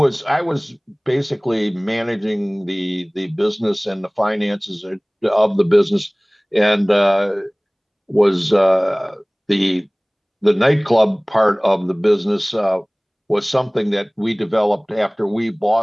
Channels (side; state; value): both; identical; correlation 1.00